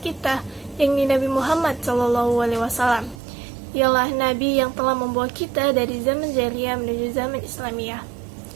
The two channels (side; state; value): left; drops out; at 3.2 s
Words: yakni Nabi Muhammad SAW. Ialah Nabi yang telah membawa kita dari zaman jahiliyah menuju zaman Islamiyah.